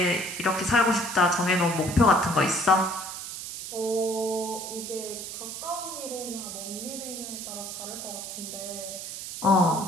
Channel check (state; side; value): noise; right; hiss, 8 dB below the sound